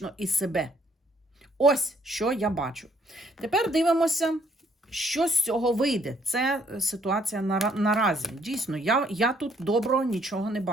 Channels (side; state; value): both; normal; correlation 0.66